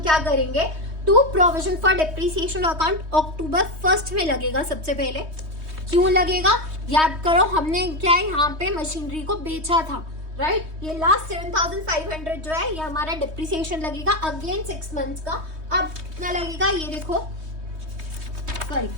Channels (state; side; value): late; left; 3.2 ms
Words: क्या करेंगे? To provision for depreciation account October 1 में लगेगा। सबसे पहले क्यों लगेगा? याद करो, हमने क्या है यहाँ पे मशीनरी को बेचा था, राइट। ये लास्ट 7,500 जो है ये हमारा डिप्रिसिएशन लगेगा अगेन 6 मंथ्स का। अब कितना लगेगा ये देखो, सॉरी,